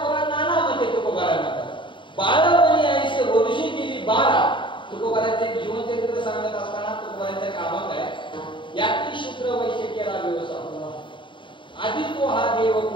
नाना मध्ये तुकोबाला म्हणतात. बाळपणी आईचे वर्षी गेली 12. तुकोबाराचे जीवनचरित्र सांगत असताना तुकोबारांच्या कामात आहे याती शुक्र वैश्य केला व्यवसाय आधी तो हा देव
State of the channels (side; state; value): right; late; 0.24 ms